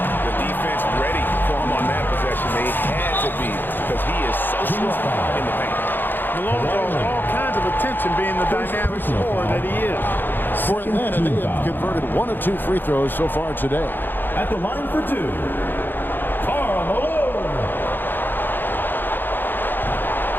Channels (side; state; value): right; late; 0.094 ms